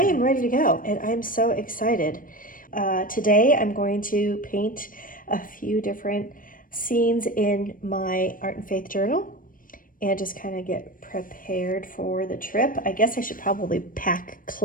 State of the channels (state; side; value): late; right; 0.40 ms